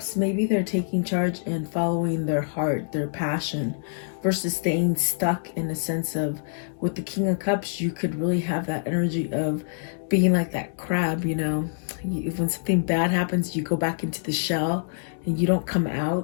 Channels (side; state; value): right; silent; digital silence